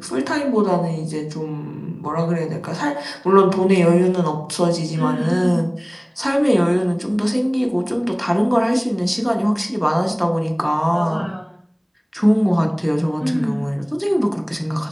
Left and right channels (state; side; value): identical; both; correlation 1.00